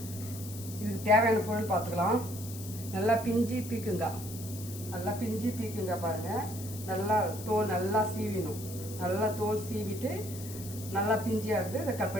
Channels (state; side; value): noise; left; hiss, 13 dB below the sound